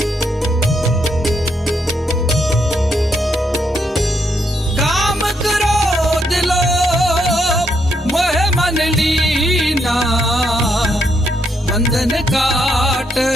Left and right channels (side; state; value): both; normal; correlation 0.77